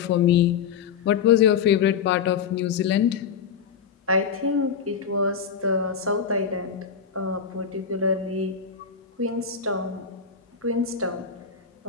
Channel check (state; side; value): quieter; right; 6.7 dB